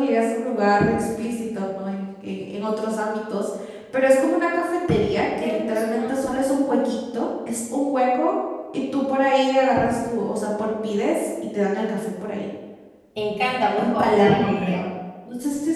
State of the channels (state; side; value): identical; both; correlation 1.00